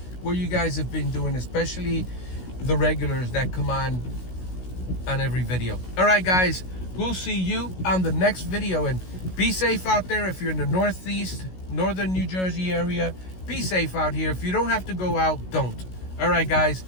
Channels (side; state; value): right; late; 16 ms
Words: what you guys have been doing, especially the regulars that come on every video. All right, guys, we'll see you on the next video, and be safe out there. If you're in the Northeast, Northern New Jersey area, be safe out here. If you don't have to go out, don't. All right, guys.